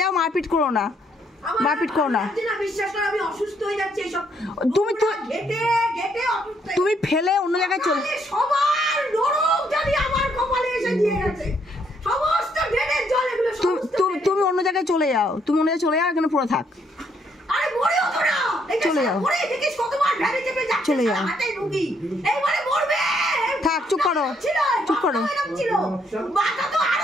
যাও, মারপিট করো না, মারপিট করো না। বিশ্বাস করো আমি অসুস্থ হয়ে যাচ্ছি এইসব তুমি তো ঘেটে ঘেটে অসুস্থ। তুমি ফেলে অন্য জায়গায় চলে। সবার নরক জানি আমার কপালে এসে দিয়ে গেছে, সমস্ত ড্রেনের জল এগুলো তুমি অন্য জায়গায় চলে যাও, তুমি অন্য জায়গায় চলে যাও, এখানে পুরো থাক। আরে মরেও তো না, চলে যাও, মরে দেখিস কতবার ভ্যানে চেপে যাচ্ছে, চলে যাও, হাতে রুগী এইবারে মরবে। থাক, চুপ করো, চুপ করো। মাথা তো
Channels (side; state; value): both; normal; correlation 0.71